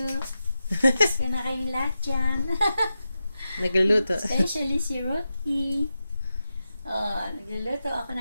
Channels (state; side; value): inverted; both; correlation -0.90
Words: Gusto na kayong lahat dyan. Nagluluto. Especially si Rocky. Nagluluto ako